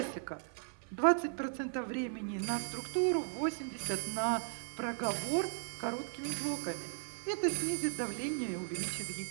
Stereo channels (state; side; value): silent; left; digital silence